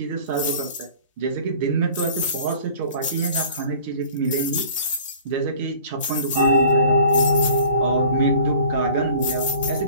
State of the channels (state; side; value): inverted; both; correlation -0.47